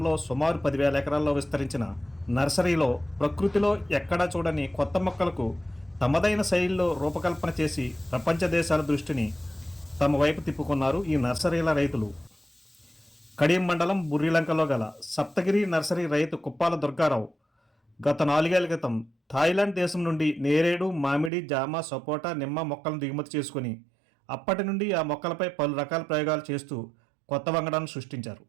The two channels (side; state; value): left; drops out; at 21.3 s